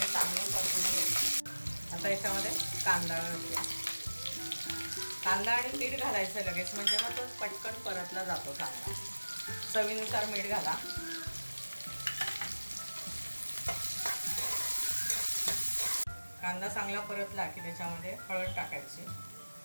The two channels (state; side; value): inverted; both; correlation -1.00